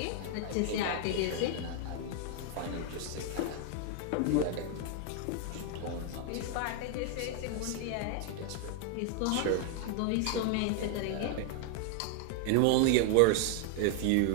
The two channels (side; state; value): both; different; correlation 0.00